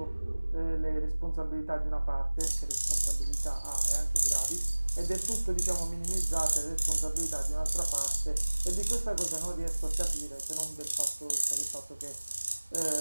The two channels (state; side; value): inverted; both; correlation -1.00